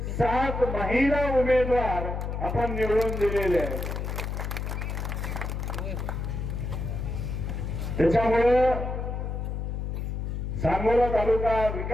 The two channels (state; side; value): noise; left; hum, 3 dB below the sound